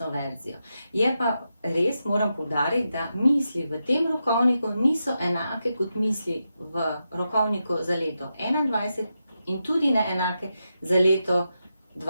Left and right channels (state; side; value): inverted; both; correlation -0.87